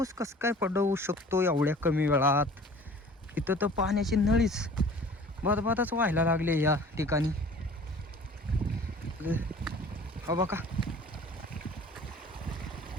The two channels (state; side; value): normal; both; correlation 0.47